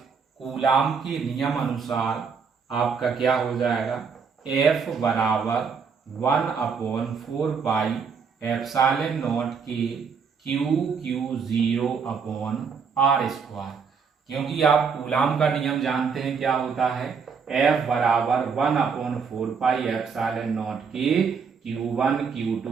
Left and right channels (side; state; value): left; quieter; 5.9 dB